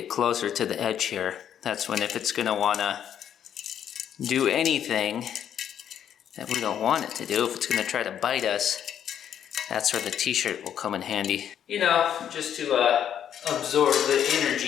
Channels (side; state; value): right; quieter; 9.4 dB